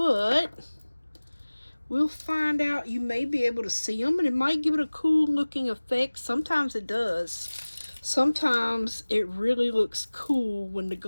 we'll find out. You may be able to see them, and it might give it a cool looking effect. Sometimes it does. Sometimes it really looks cool when the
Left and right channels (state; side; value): inverted; both; correlation -1.00